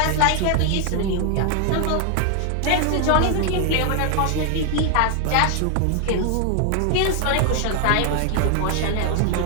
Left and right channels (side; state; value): both; different; correlation 0.00